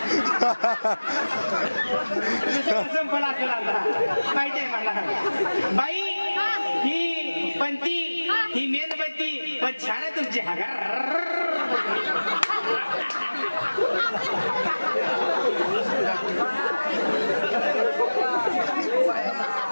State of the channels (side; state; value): both; inverted; correlation -1.00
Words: संपला असेल आता माहिती आहे मला बाई ही पंती ही मेणबत्ती पण छान आहे तुमची